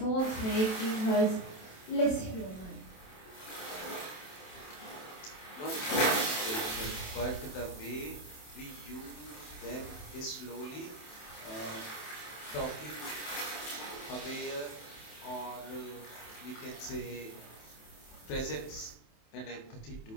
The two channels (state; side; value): late; right; 27 ms